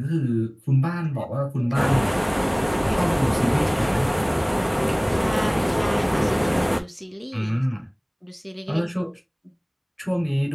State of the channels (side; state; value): both; identical; correlation 1.00